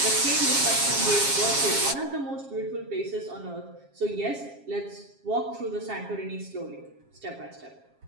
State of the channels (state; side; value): late; left; 7.3 ms